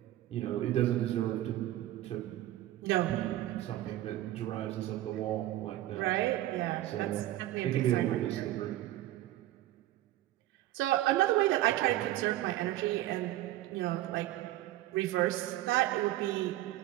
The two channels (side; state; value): left; quieter; 15.0 dB